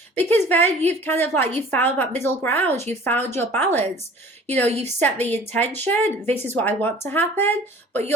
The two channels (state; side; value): normal; both; correlation 0.47